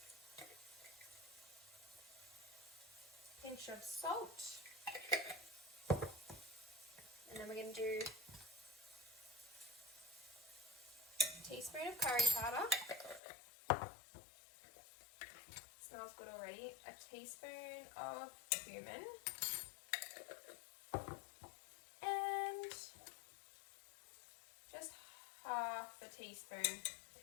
Pinch of salt. And then we're going to do a teaspoon of curry powder. Smells good already. A teaspoon of cumin. And just half a teaspoon,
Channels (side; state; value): right; drops out; at 13.2 s